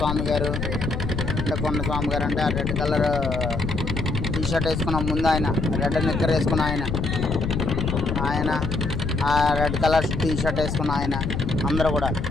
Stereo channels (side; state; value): left; noise; rumble, 3 dB below the sound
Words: గారు. అంటే కొండ స్వామి గారు అంటే ఆ రెడ్ కలర్ టీ షర్ట్ వేసుకున్న ముందు ఆయన, రెడ్ నిక్కర్ వేసుకున్న ఆయన, ఆ రెడ్ కలర్ టీ షర్ట్ వేసుకున్న ఆయన, అందరూ కూడా